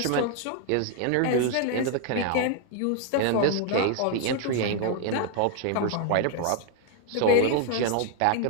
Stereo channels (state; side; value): different; both; correlation 0.00